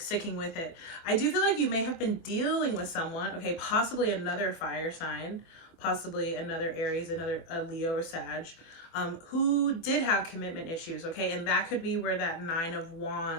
sticking with it. I do feel like you may have been dealing with someone, okay, possibly another fire sign, possibly another Aries, another Leo or Sag, who did have commitment issues, okay? And that could be where that 9 of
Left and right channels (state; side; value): late; right; 24 ms